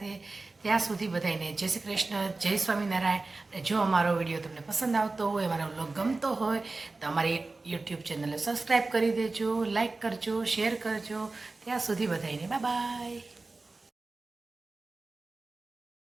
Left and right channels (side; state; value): left; quieter; 3.5 dB